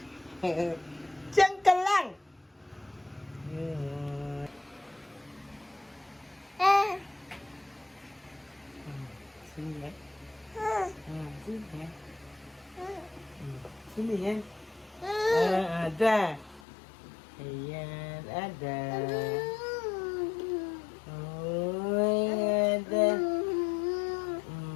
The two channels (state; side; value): drops out; right; at 16.6 s